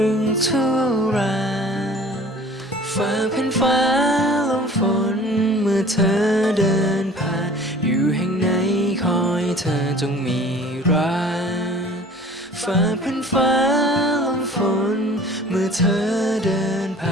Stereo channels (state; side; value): normal; both; correlation 0.47